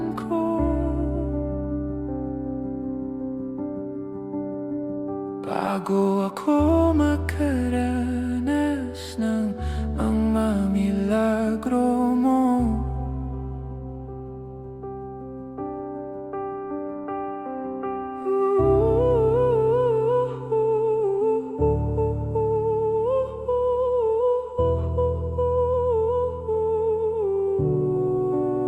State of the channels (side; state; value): both; identical; correlation 1.00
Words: ko bago ako makaranas ng mga milagro mo?